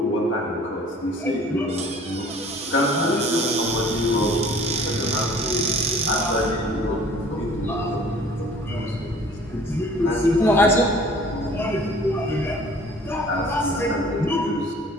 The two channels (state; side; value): normal; both; correlation 0.51